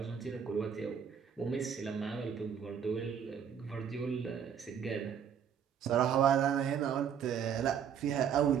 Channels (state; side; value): quieter; left; 8.0 dB